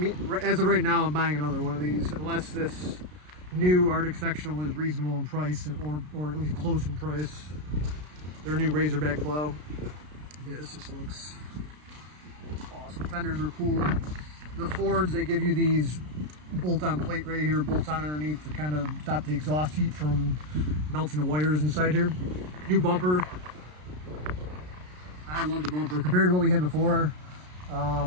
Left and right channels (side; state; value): left; late; 33 ms